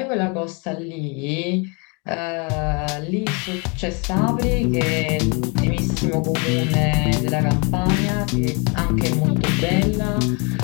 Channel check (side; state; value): right; quieter; 32.0 dB